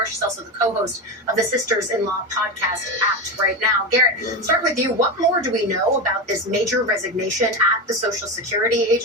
She's also the co-host of the Sisters-in-Law podcast Act Right Now. Garrett, start with you. What more do we know about this major resignation at the Social Security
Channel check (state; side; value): normal; both; correlation 0.18